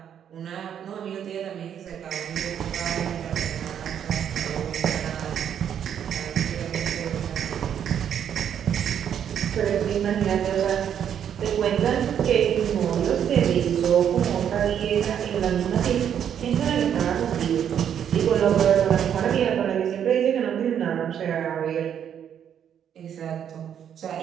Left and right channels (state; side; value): quieter; left; 9.0 dB